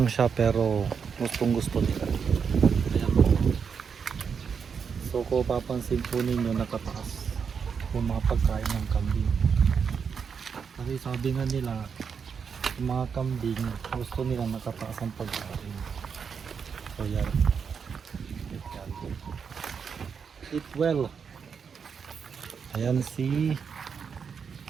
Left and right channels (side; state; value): left; quieter; 6.4 dB